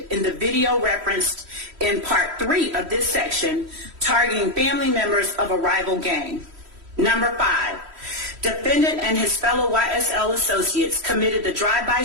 in the video referenced in Part 3 of this section, targeting family members of a rival gang. Number 5. Defendant and his fellow YSL associates committed the drive-by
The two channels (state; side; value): late; left; 3.1 ms